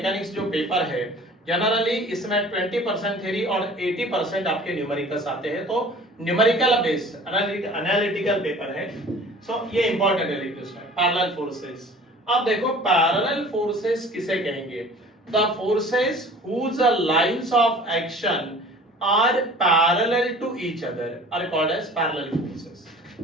जो पेपर है जनरली इसमें 20% थ्योरी और 80% आपके न्यूमेरिकल्स आते हैं। तो न्यूमेरिकल बेस्ड एनालिटिकल पेपर है। सो ये इंपॉर्टेंट है लिखो इसमें पैरेलल फोर्सेस। अब देखो पैरेलल फोर्सेस किसे कहेंगे? The forces whose lines of action are parallel to each other are called as parallel forces.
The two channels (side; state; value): both; normal; correlation 0.46